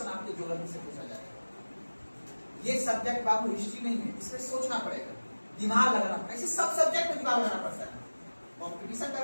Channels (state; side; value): inverted; both; correlation -1.00